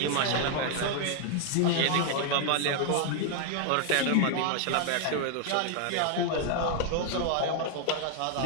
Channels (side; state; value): both; different; correlation 0.00